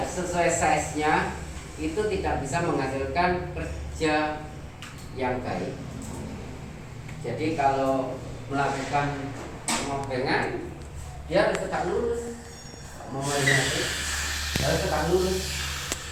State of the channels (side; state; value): both; identical; correlation 1.00